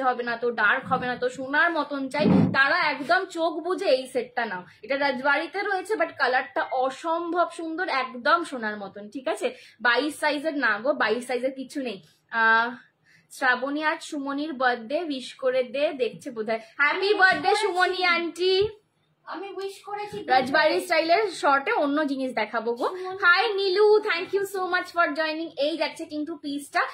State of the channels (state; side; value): identical; both; correlation 1.00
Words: হবে না তো, ডার্ক হবে না তো, সোনার মতন চাই, তারা একদম চোখ বুঝে এই সেটটা নাও। এটা রাজবাড়িতে রয়েছে, বাট কালারটা অসম্ভব সুন্দর, একদম সোনার মতন, ঠিক আছে? 22 সাইজের না গো, 22 সাইজের কিছু নেই। শ্রাবণী আজ সুমনির বার্থডে, উইশ করে দে, দেখছে বোধহয়। হ্যাপি বার্থডে সুমনি আন্টি, আমি উইশ করেছি। রাজবাড়ি স্টাইলের শর্টে অন্য জিনিস দেখাবো গো। Hi Nilu, thank you so much for joining. এই যাচ্ছে কিন্তু পিসটা